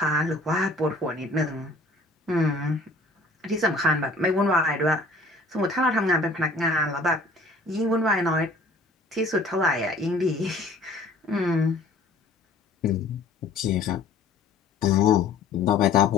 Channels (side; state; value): right; quieter; 3.0 dB